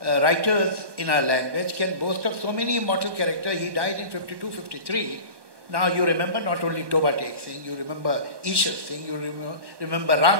writers in our language can boast of so many immortal characters. He died in 52, 53. Now you remember not only Toba Tek Singh, you remember Ishar Singh, you remember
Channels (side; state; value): left; late; 1.2 ms